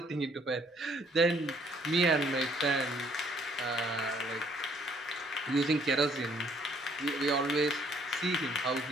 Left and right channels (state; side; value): normal; both; correlation 0.64